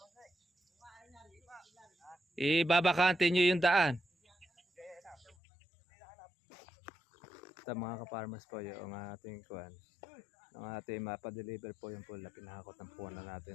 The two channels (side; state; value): right; drops out; at 5.4 s